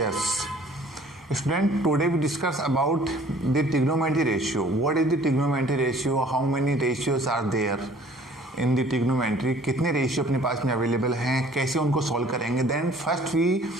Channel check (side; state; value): both; normal; correlation 0.54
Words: Student, today we discuss about the trigonometry ratio. What is the trigonometry ratio? How many ratios are there in the trigonometry? कितने ratio अपने पास में available हैं, कैसे उनको solve करेंगे? Then first we